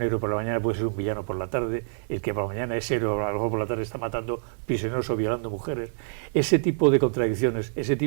héroe por la mañana puede ser un villano por la tarde, el que por la mañana es héroe, a lo mejor por la tarde está matando prisioneros o violando mujeres. Ese tipo de contradicciones, ese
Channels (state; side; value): silent; left; digital silence